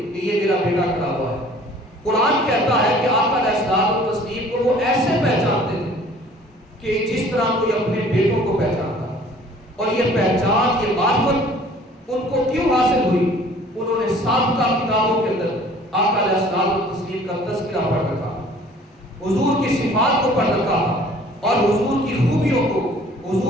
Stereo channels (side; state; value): both; normal; correlation 0.52